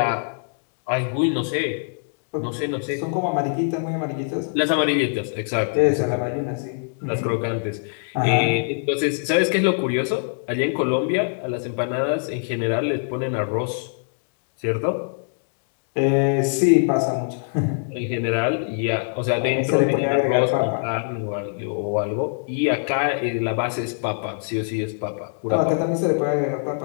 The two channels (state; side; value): silent; right; digital silence